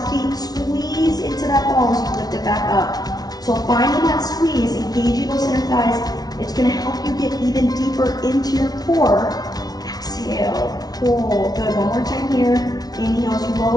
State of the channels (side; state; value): right; late; 0.19 ms